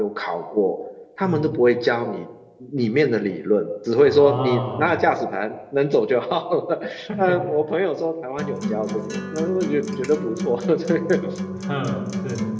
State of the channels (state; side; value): identical; both; correlation 1.00